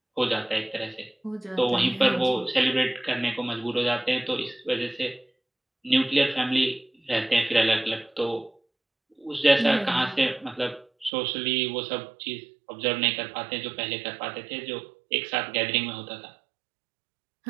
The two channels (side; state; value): left; drops out; at 11.1 s